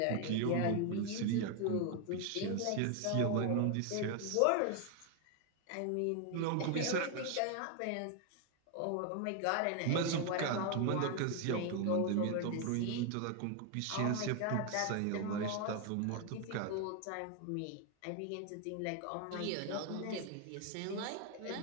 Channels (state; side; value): different; both; correlation 0.01